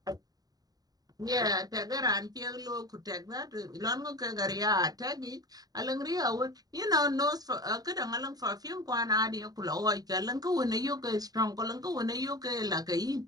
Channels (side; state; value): left; late; 0.18 ms